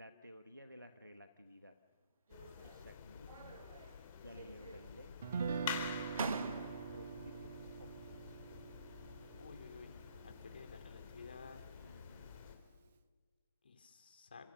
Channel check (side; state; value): both; inverted; correlation -0.63